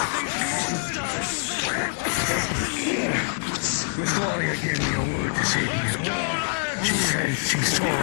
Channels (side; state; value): right; silent; digital silence